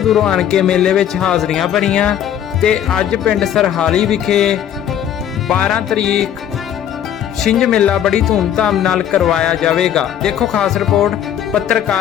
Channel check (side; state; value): right; quieter; 10.1 dB